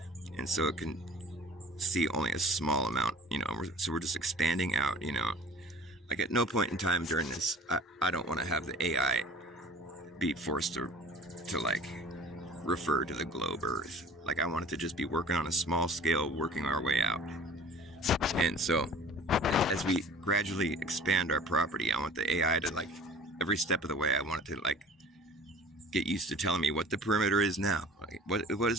and so it can see only a small amount, so we're just expanding out, like at no point in time during this, I don't want to have the AI be forced to like refer to the globe earth. Like I want it to just be working on a small scale, working our way out. And so as we gradually expand our property, I want the AI to like every step of the way, I want it to like get used to telling me what the perimeter is now. Like, what is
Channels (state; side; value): normal; both; correlation 0.45